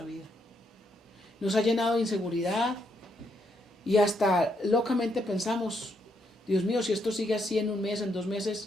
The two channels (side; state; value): both; normal; correlation 0.76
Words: vida. Nos ha llenado de inseguridad y hasta locamente pensamos, Dios mío, si esto sigue así en un mes, en 2